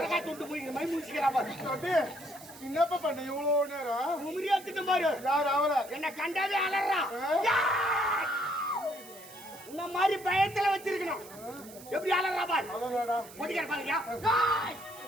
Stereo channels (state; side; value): noise; right; hiss, 18 dB below the sound